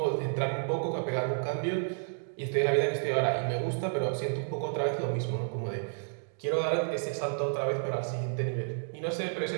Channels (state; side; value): silent; left; digital silence